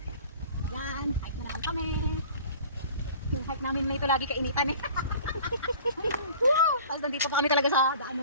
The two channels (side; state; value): both; inverted; correlation -0.45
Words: Yan, hike na lang kami. Yung hike namin may ito lagi kainitan eh. Tapos nandito pa kami talaga sa